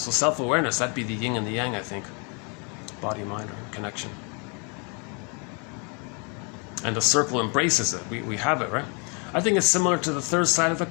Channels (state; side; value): quieter; right; 35.0 dB